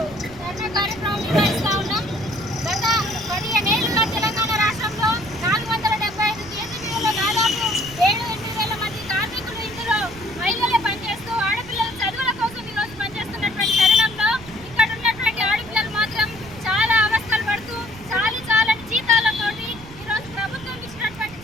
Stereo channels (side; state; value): right; noise; rumble, 17 dB below the sound